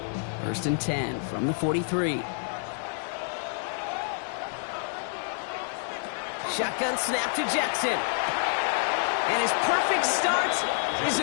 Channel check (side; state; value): right; silent; digital silence